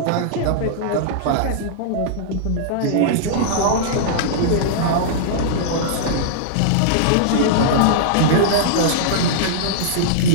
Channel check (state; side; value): different; both; correlation -0.02